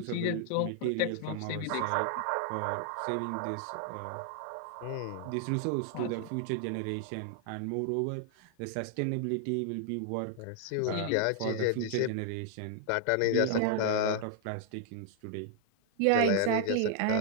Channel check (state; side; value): different; both; correlation 0.00